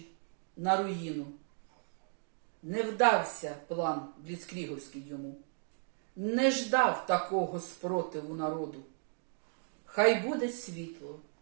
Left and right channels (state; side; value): silent; left; 54 dB below the other